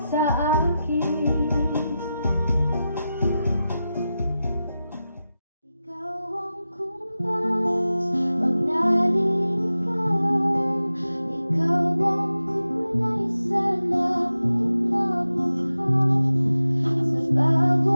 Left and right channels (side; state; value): both; inverted; correlation -0.92